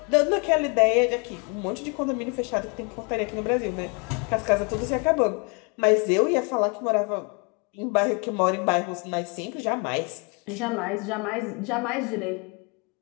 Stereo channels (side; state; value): right; quieter; 33.1 dB